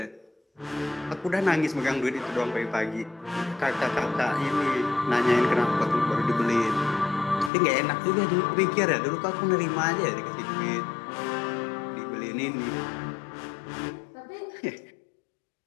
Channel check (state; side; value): drops out; right; at 7.5 s